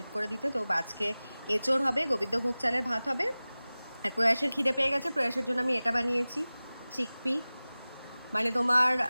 করে দিতে। তো আজকে এঁচোড় হবে, গোবিন্দভোগ চালের ভাত হবে। আর প্রয়াসের খিদে পেয়ে গেছে, প্রয়াসের জন্য আমি এটা বানিয়েছি, চিকপি, মানে তোমার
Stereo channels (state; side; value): inverted; both; correlation -0.98